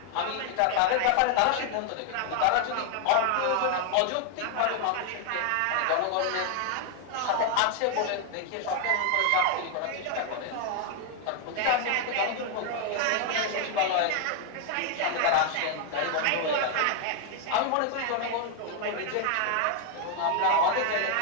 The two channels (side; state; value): both; different; correlation 0.00